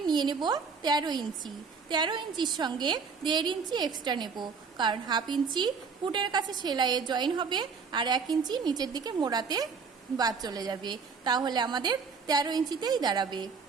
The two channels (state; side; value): quieter; left; 5.4 dB